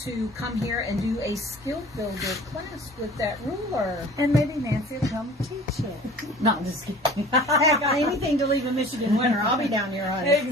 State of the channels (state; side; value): normal; both; correlation 0.45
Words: come here and do a skill builder class with that ruler. And maybe Nancy will come teach it. No, I'm just kidding. Heck, anything to leave in Michigan winter, I'll be down here, honey.